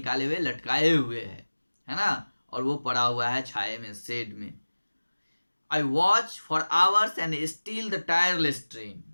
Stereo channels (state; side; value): inverted; both; correlation -1.00